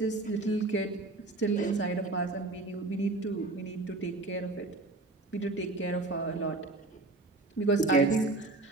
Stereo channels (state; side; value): quieter; left; 3.0 dB